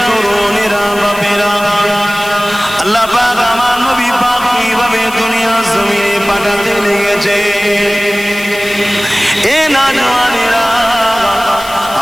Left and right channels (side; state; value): left; noise; hiss, 15 dB below the sound